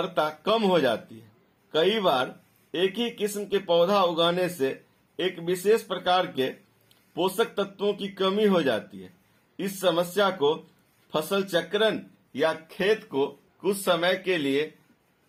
कम हो जाती है। कई बार एक ही किस्म के पौधा उगाने से एक विशेष प्रकार के पोषक तत्वों की कमी हो जाती है। इस समस्या को फसल चक्रण या खेत को कुछ समय के लिए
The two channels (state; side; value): identical; both; correlation 1.00